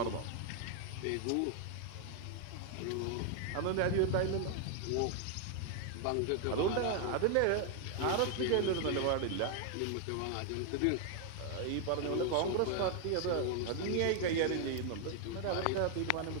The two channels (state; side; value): different; both; correlation 0.00